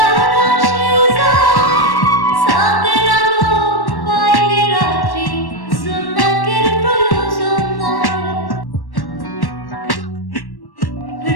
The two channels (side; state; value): right; late; 1.1 ms